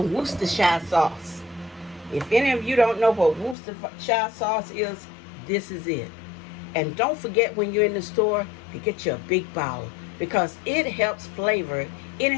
Worcestershire sauce. If any of you don't know what Worcestershire sauce is, this is it. And don't forget when you're in the store to get you a big bowl because it helps flavor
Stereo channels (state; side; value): drops out; right; at 3.6 s